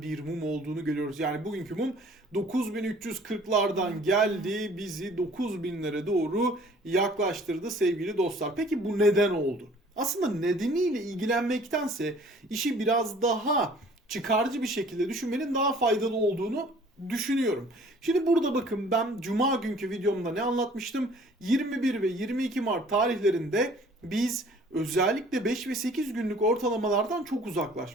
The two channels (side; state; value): both; normal; correlation 0.53